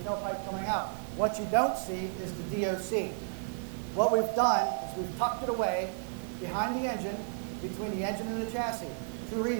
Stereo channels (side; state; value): left; silent; 56 dB below the other